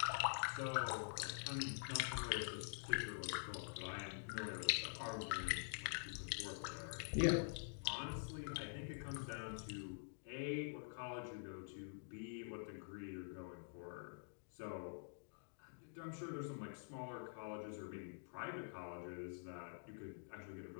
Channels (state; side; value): silent; right; digital silence